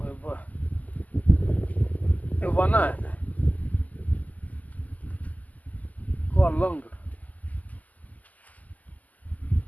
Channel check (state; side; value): late; right; 0.079 ms